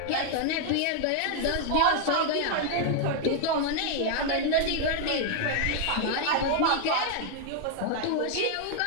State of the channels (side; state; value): both; different; correlation 0.00